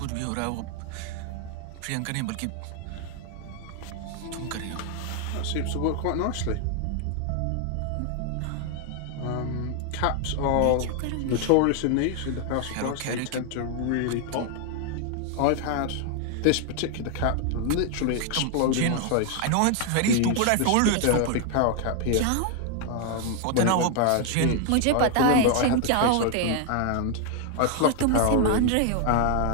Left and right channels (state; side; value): different; both; correlation 0.00